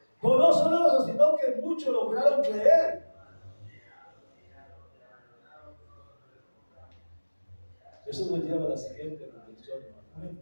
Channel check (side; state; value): both; inverted; correlation -1.00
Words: Pero no solo eso, sino que muchos lograron creer. Eso nos lleva a la siguiente reflexión. Un